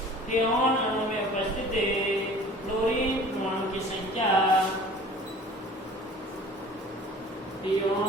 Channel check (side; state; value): both; normal; correlation 0.45